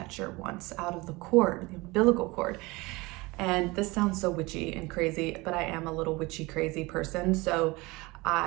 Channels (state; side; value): quieter; left; 23.3 dB